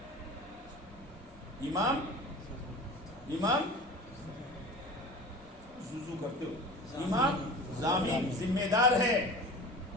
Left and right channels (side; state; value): both; normal; correlation 0.37